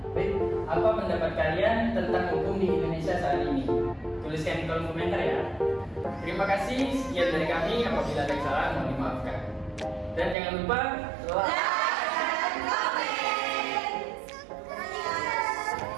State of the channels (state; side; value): drops out; left; at 10.4 s